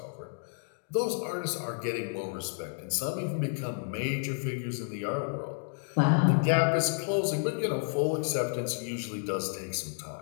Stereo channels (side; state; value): right; silent; 57 dB below the other